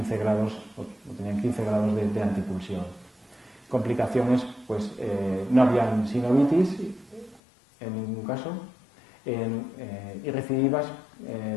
grados, o tenían 15 grados de antipulsión. Complicaciones, pues no habían sinovitis en ningún caso, y recidivas.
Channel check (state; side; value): drops out; right; at 7.4 s